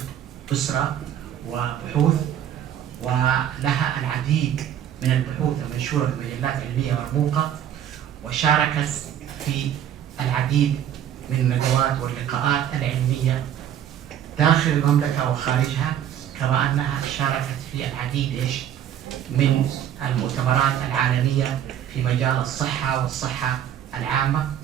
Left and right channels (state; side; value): quieter; left; 10.2 dB